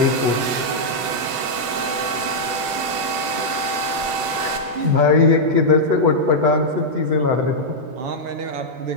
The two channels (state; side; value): late; left; 8.0 ms